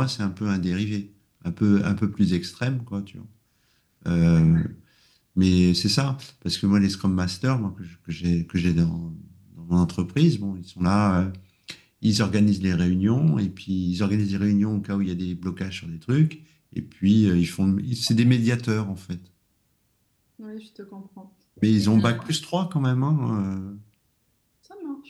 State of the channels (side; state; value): both; identical; correlation 1.00